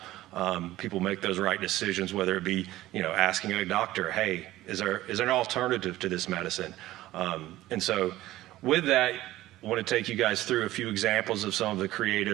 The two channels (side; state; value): left; quieter; 15.9 dB